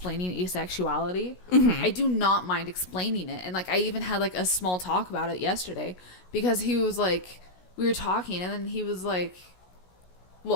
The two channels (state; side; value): late; right; 16 ms